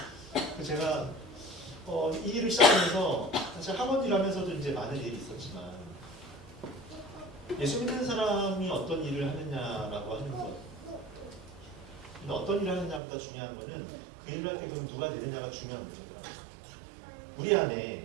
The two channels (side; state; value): left; drops out; at 13.0 s